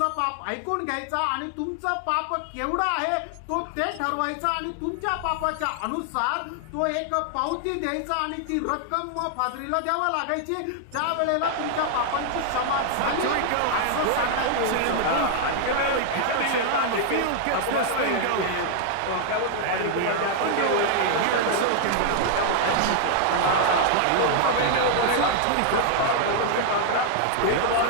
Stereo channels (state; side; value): different; both; correlation 0.00